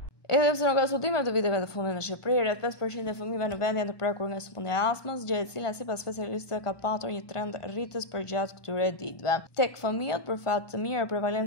Edhe pse nuk ka studime të viteve të fundit në Shqipëri, rreth 5% e fëmijëve në vend janë të prekur nga sëmundja e astmës, gjë e cila sipas specialistëve ka patur një trend rritës përgjatë këtyre ditëve. Tek fëmijët, për fat të mirë,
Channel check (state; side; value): late; right; 1.2 ms